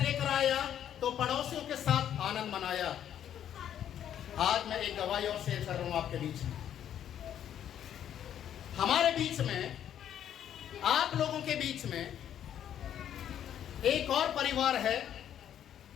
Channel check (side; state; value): right; quieter; 10.1 dB